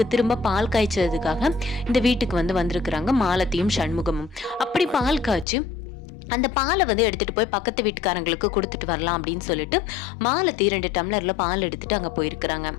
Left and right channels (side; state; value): right; drops out; at 5.5 s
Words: திரும்ப பால் காய்ச்சதுக்காக இந்த வீட்டுக்கு வந்திருக்கிறாங்க மாலதியும் சண்முகமும். அப்படி பால் காய்ச்சி அந்த பாலை எடுத்துகிட்டு போய் பக்கத்து வீட்டுக்காரங்களுக்கு கொடுத்துட்டு வரலாம் அப்படின்னு சொல்லிட்டு மாலதி 2 டம்ளரில் பால் எடுத்துகிட்டு அங்கே போயிருக்கிறாங்க.